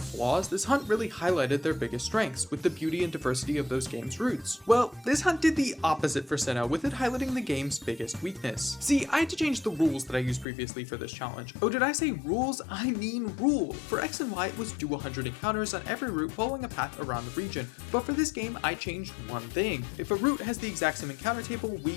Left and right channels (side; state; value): right; drops out; at 10.5 s